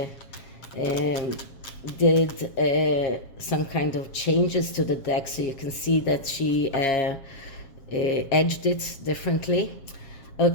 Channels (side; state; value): right; late; 7.3 ms